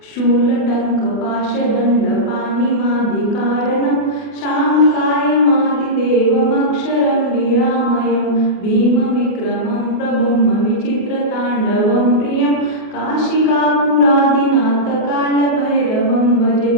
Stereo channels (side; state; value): right; late; 28 ms